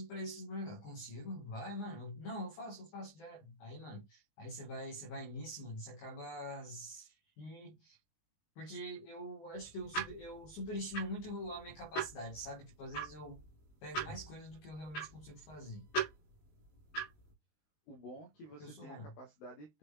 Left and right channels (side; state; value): right; late; 19 ms